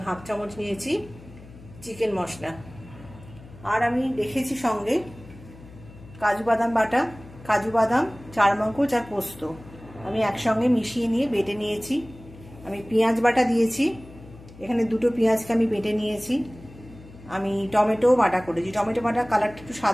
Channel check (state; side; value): noise; left; hum, 19 dB below the sound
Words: 1/2 চামচ নিয়েছি চিকেন মশলা। আর আমি রেখেছি সঙ্গে কাজু বাদাম বাটা, কাজু বাদাম, চারমগজ আর পোস্ত আমি একসঙ্গে মিশিয়ে নিয়ে বেটে নিয়েছি। আমি পেঁয়াজ বাটা দিয়েছি, এখানে দুটো পেঁয়াজকে আমি বেটে নিয়েছি। আমি টমেটো বাটা করেছি। টমেটো বাটা কালারটা একটু